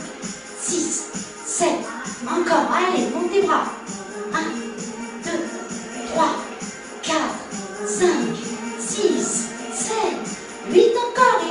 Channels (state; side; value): identical; both; correlation 1.00